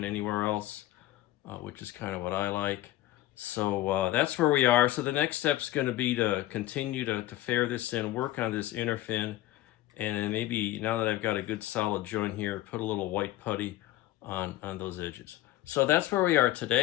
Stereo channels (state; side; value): quieter; right; 15.2 dB